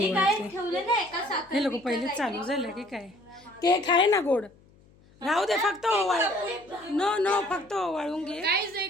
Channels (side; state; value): left; noise; hum, 29 dB below the sound